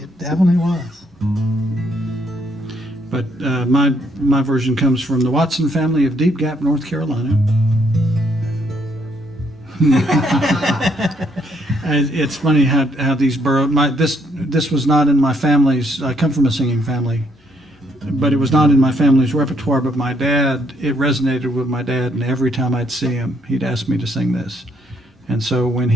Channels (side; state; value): both; normal; correlation 0.70